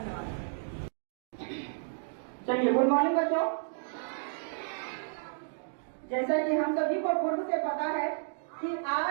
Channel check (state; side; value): silent; left; digital silence